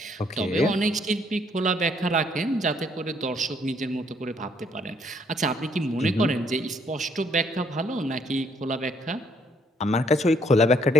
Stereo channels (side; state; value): both; normal; correlation 0.68